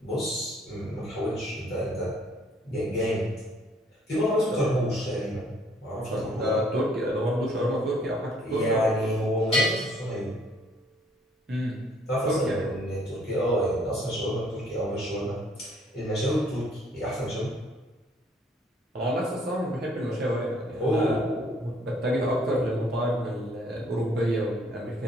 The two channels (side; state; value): both; normal; correlation 0.62